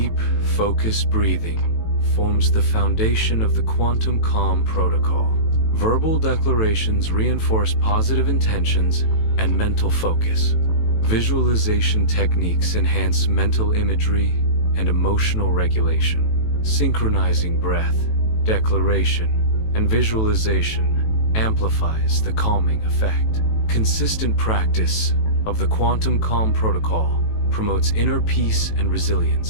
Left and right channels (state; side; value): late; right; 18 ms